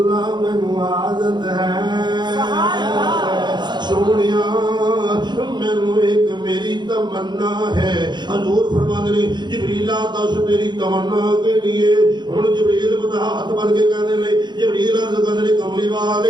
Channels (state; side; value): late; left; 0.21 ms